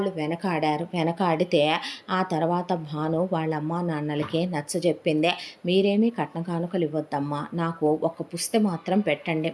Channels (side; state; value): both; identical; correlation 1.00